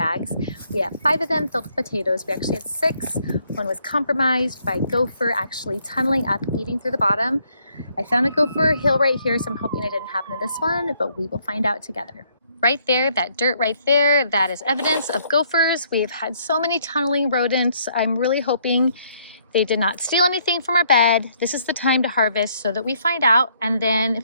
We have 5 of them filled with potatoes. We actually had 6. One was compromised by a gopher actually tunneling up, eating through the bottom. I found a gopher hill right here, so I'm hoping it didn't happen to this one, but we will find out together. Right there, that dirt right there, that is evidence of gophers. We've had so many tunneling rodents. I'm really hoping they did not steal anything from our bed. This is the time to harvest so that we find out. And then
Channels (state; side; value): inverted; both; correlation -0.68